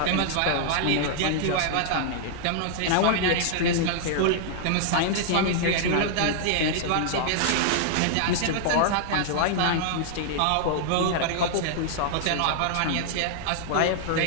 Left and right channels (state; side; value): different; both; correlation -0.01